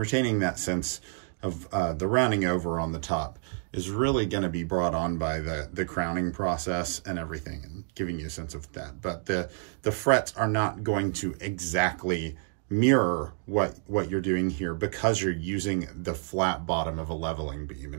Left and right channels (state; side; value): silent; left; 59 dB below the other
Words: that sense of the rounding over on the top is really going to be brought on by the crowning process and everything, and giving you a sense of that. But the frets are not going to exactly mirror what you're doing here, because you're using the flat bottom of a leveling beam,